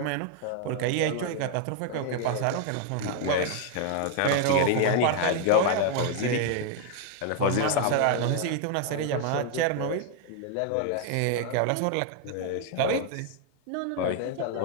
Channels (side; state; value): both; different; correlation 0.00